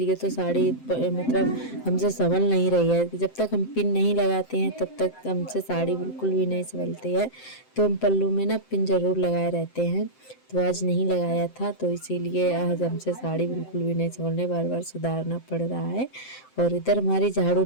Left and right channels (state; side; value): late; right; 7.7 ms